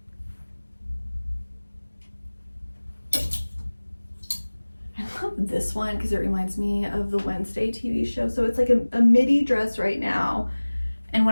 I love this one because it reminds me of the Wednesday TV show. So it's like a midi dress right now. And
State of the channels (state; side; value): inverted; both; correlation -1.00